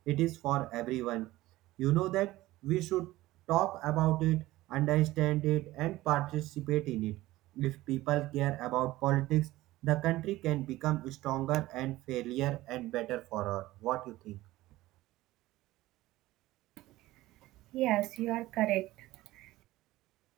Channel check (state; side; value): quieter; left; 17.3 dB